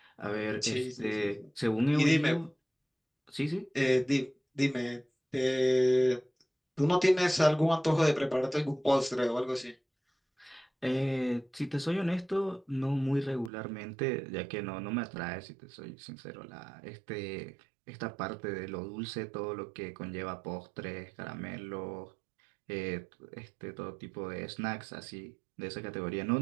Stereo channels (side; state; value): left; drops out; at 13.5 s